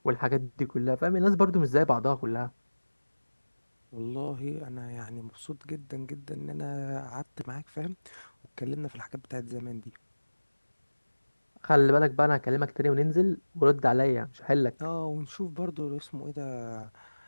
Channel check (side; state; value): both; inverted; correlation -1.00